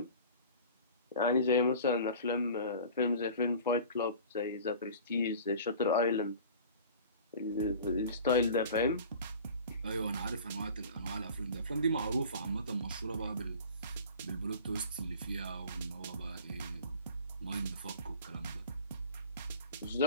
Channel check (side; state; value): both; inverted; correlation -0.42